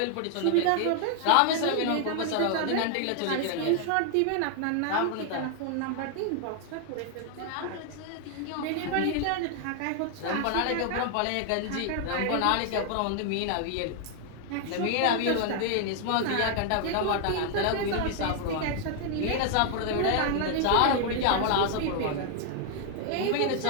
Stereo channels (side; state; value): both; different; correlation 0.00